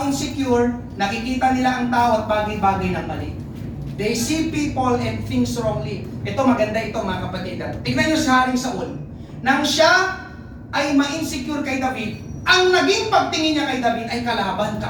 insecure, nakikita nila ang tao at bagay-bagay ng mali. They see people and things wrongly. Ito, maganda ito, mga kapatid. Tignan nyo si Haring Saul. Nang siya ay ma-insecure kay David, ang naging pagtingin niya kay David ay kalaban,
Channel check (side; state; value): both; identical; correlation 1.00